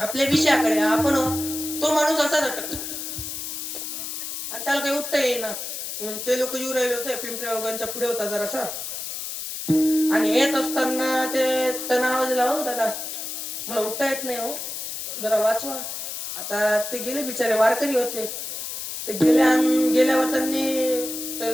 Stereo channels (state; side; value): noise; left; hiss, 6 dB below the sound